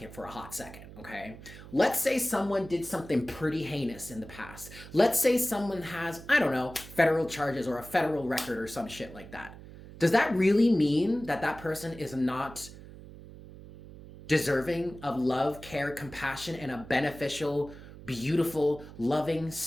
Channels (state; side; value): noise; right; hum, 16 dB below the sound